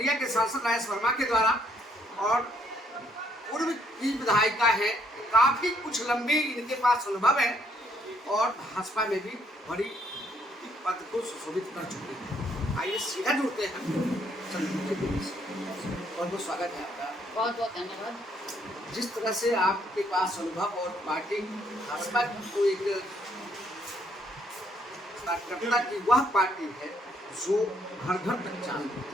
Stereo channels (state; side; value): normal; both; correlation 0.69